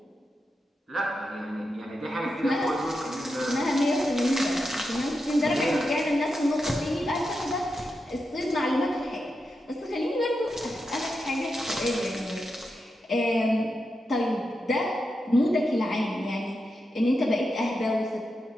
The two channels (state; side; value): normal; both; correlation 0.87